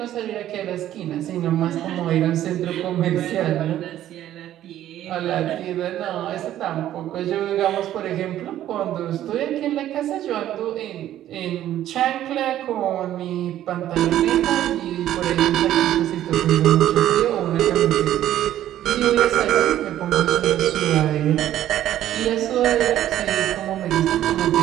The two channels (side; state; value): left; quieter; 12.4 dB